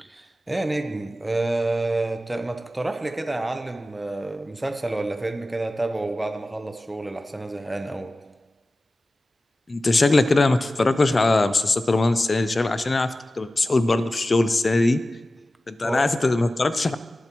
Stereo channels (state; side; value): normal; both; correlation 0.95